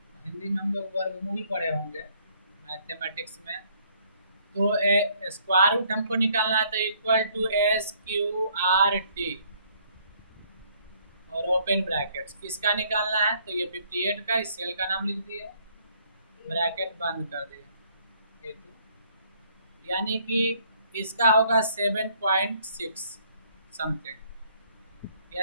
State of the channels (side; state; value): both; inverted; correlation -0.64